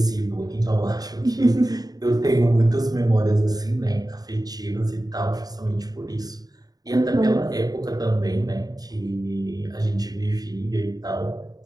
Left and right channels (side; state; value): left; late; 0.18 ms